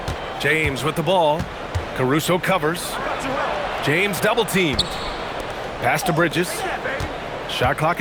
James with the ball. Caruso covers. James double teamed. Pass to Bridges. Shot clock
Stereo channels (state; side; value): identical; both; correlation 1.00